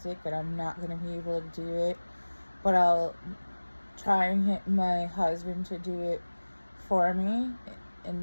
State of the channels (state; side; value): inverted; both; correlation -1.00